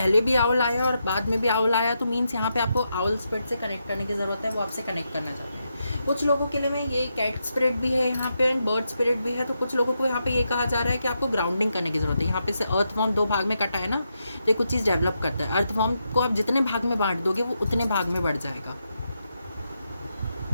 भी आउल आया और बाद में भी आउल आया, तो मीन्स यहाँ पे आपको आउल स्पिरिट से कनेक्ट करने की ज़रूरत है, वो आपसे कनेक्ट करना चाहते हैं। कुछ लोगों के लिए में ये कैट स्पिरिट भी है यहाँ पे एंड बर्ड स्पिरिट भी है। तो कुछ लोगों को यहाँ पे ये कहा जा रहा है कि आपको ग्राउंडिंग करने की ज़रूरत है। यहाँ पे से अर्थवॉर्म 2 भाग में कटा है ना, तो ये कुछ चीज़ डेवलप करता है। अर्थवॉर्म को आप जितने भाग में बांट दोगे वो उतने भाग में बढ़ जाएगा।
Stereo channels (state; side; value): inverted; both; correlation -0.84